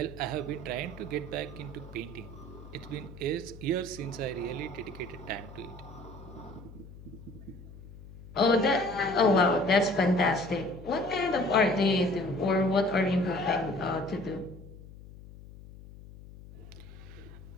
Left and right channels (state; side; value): noise; left; hum, 17 dB below the sound